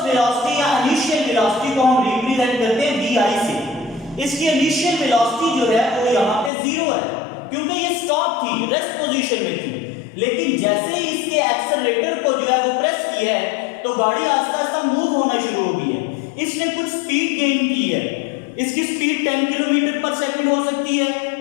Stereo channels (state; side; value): drops out; right; at 6.5 s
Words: वेलोसिटी या इनिशियल वेलोसिटी को हम रिप्रेजेंट करते हैं vi से। इसकी इनिशियल वेलोसिटी जो है वो यहाँ पे 0 है क्योंकि ये स्टॉप थी, रेस्ट पोजीशन में थी। लेकिन जैसे ही इसके एक्सेलरेटर को जो है वो प्रेस किया है तो गाड़ी आहिस्ता आहिस्ता मूव होना शुरू हो गई है। इसने कुछ स्पीड गेन की है। इसकी स्पीड 10 किलोमीटर पर सेकंड हो सकती है,